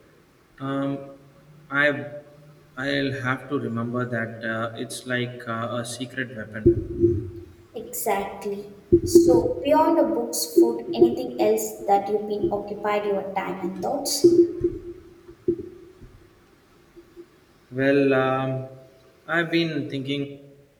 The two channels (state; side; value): identical; both; correlation 1.00